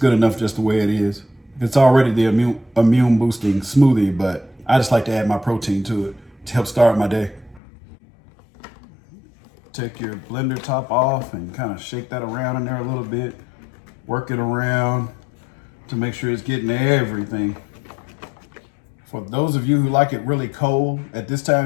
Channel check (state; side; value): drops out; right; at 7.6 s